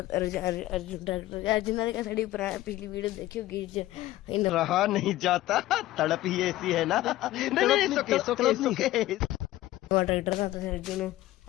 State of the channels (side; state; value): right; quieter; 15.9 dB